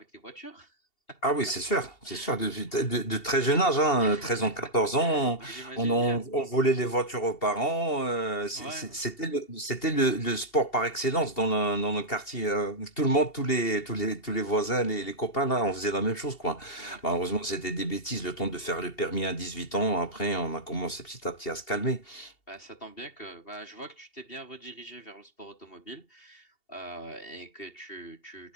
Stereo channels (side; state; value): right; late; 2.7 ms